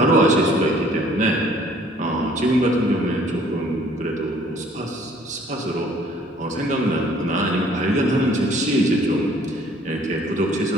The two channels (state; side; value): normal; both; correlation 0.58